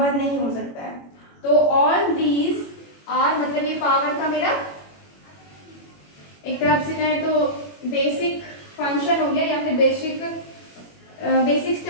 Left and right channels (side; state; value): right; late; 21 ms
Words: नहीं हो सकता है। तो ऑल दीज आर, मतलब ये पावर का मेरा एक तरफ से कहें तो बेसिक फंक्शन हो गया, या फिर बेसिक